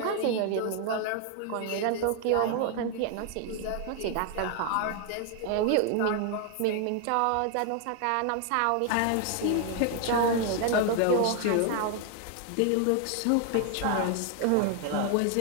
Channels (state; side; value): different; both; correlation 0.00